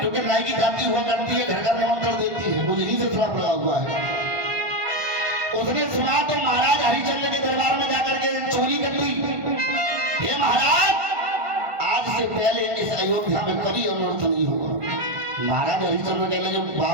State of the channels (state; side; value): late; left; 1.5 ms